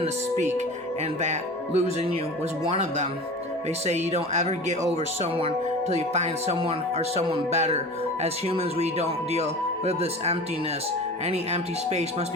to speak, and that losing you was one of them. They say you don't ever get over someone till you find someone or someone better. As humans, we don't deal with this emptiness. Any empty space must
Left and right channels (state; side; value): normal; both; correlation 0.35